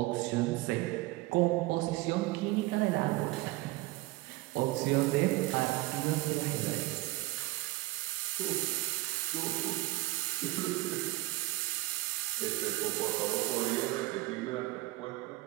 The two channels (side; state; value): left; quieter; 19.4 dB